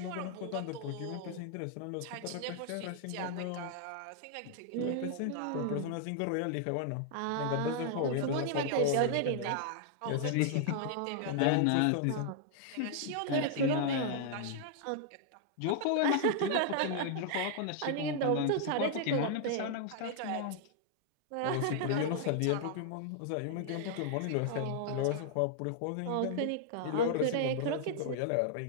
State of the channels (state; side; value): different; both; correlation -0.01